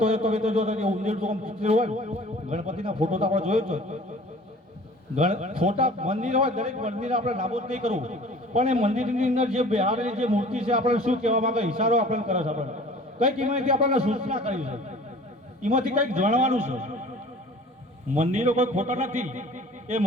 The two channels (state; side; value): normal; both; correlation 0.47